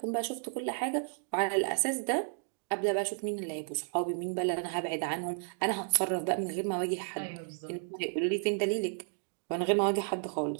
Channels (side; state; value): left; silent; 56 dB below the other